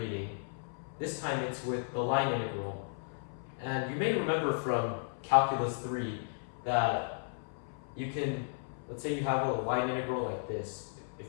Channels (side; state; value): right; silent; 55 dB below the other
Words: This time it's with the line integral. And you may remember from calculus 3 that you can, let's say you have a line integral like this.